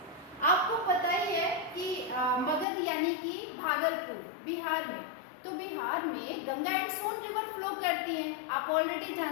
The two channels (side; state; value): right; drops out; at 2.7 s